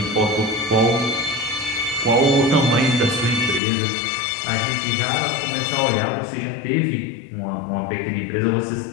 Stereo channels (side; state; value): right; drops out; at 3.6 s